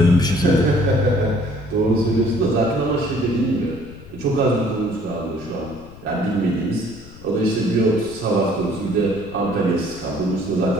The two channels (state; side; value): noise; left; rumble, 18 dB below the sound